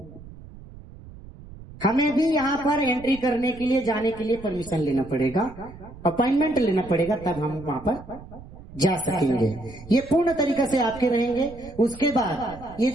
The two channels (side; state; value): right; noise; rumble, 17 dB below the sound